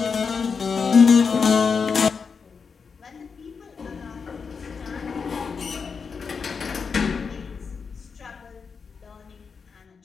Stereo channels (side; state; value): right; quieter; 5.6 dB